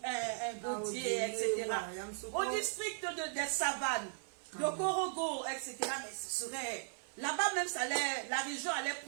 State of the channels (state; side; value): silent; left; 53 dB below the other